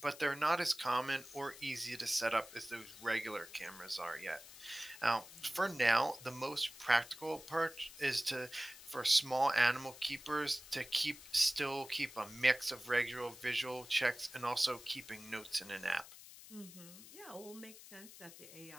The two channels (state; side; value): noise; left; hiss, 17 dB below the sound